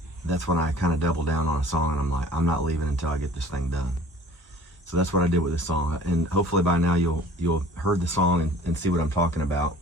that's when I kind of double down on a song, and I'm like, I'm not leaving until I get this thing done. So that's what I did with this song, and hopefully by now you'll heard the song and see what I'm talking about.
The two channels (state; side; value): normal; both; correlation 0.49